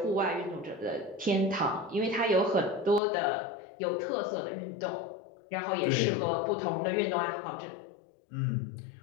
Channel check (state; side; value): drops out; right; at 3.0 s